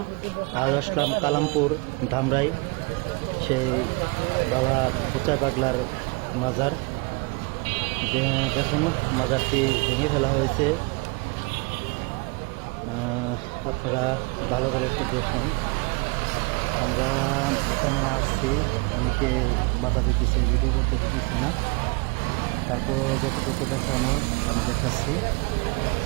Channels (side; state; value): left; quieter; 29.6 dB